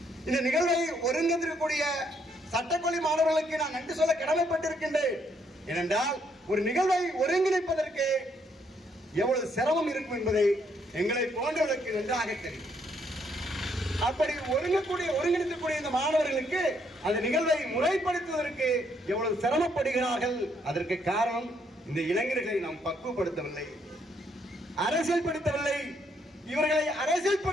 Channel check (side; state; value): both; normal; correlation 0.72